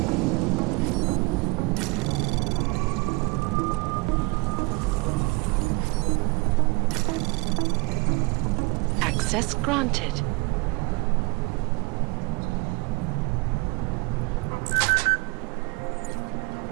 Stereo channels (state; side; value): quieter; left; 26.0 dB